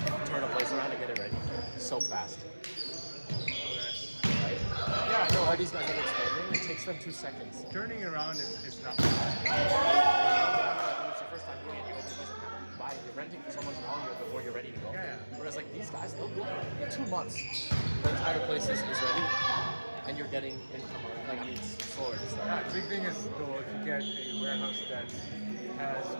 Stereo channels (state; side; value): inverted; both; correlation -1.00